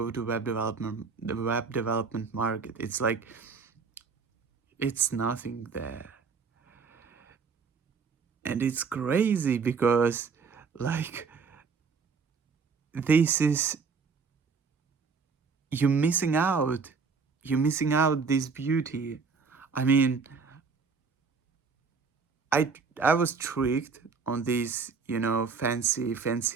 to the web development market. It's like it's nothing there. And it's crazy because like this is you're missing out. You're missing out this beauty. I mean, I was tricked on these,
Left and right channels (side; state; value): left; quieter; 5.2 dB